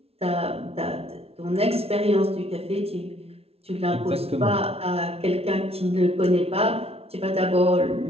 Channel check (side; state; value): left; late; 0.29 ms